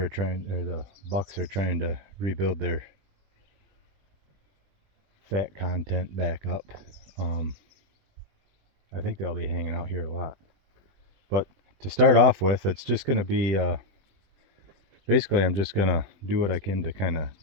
are the bucks are trying to rebuild their fat content back up, I think they'll be hanging out here a lot. But to start off with, it's just going to be basically, I'm just going to do what I can to kind of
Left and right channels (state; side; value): late; left; 20 ms